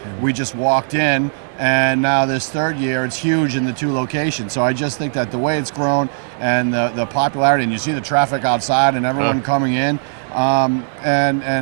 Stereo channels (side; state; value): left; silent; 66 dB below the other